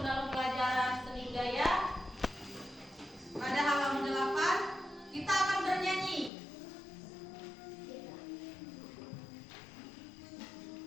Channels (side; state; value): right; drops out; at 6.3 s